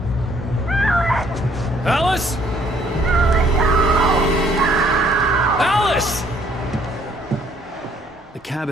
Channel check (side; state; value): both; normal; correlation 0.63